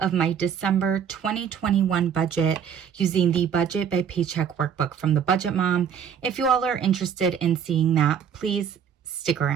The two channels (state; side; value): quieter; left; 7.9 dB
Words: my December 2021 budget using the Budget by Paycheck Workbook from the Budget Mom. If you all are interested in seeing that, please stick